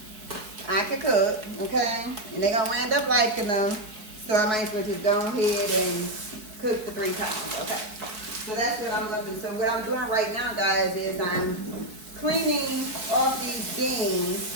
Okay? And they gonna end up liking them. So I might as well just go ahead and cook the 3 pounds. Okay. So that's what I'm looking. So what I'm doing right now, guys, is I'm cleaning off these beans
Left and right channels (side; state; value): left; late; 4.7 ms